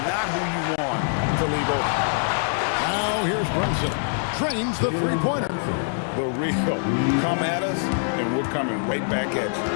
not who you want to leave open. Now here's Brunson. Drains the three-pointer. The real. Come at us, and we're coming right back at you.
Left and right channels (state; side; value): silent; right; digital silence